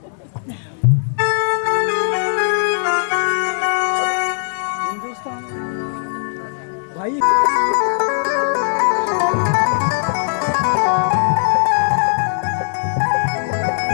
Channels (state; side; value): silent; right; digital silence